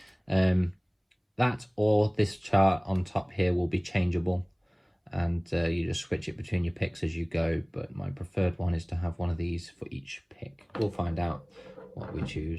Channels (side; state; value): both; identical; correlation 1.00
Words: That or this chart on top here will be changeable, and you just switch it between your picks as you go, but my preferred one is to have one of these for each pick. We'll find out what we